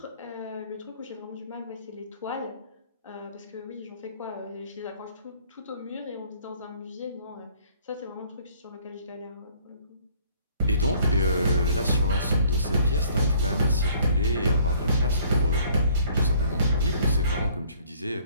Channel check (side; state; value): both; inverted; correlation -0.58